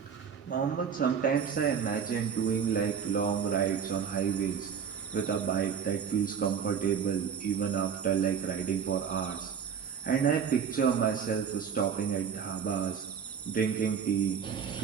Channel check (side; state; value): left; quieter; 7.2 dB